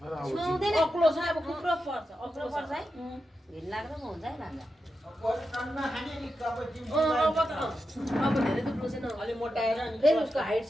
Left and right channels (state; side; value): normal; both; correlation 0.89